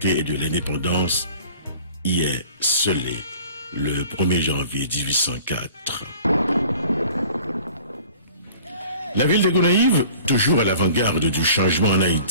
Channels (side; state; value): both; inverted; correlation -0.47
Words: et de l'indépendance y est scellé le 1er janvier 1804. La ville de Gonaïves, toujours à l'avant-garde du changement en